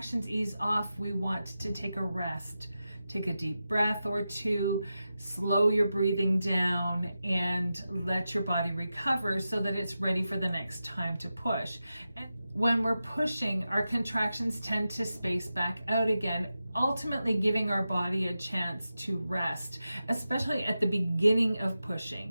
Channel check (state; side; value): inverted; both; correlation -0.92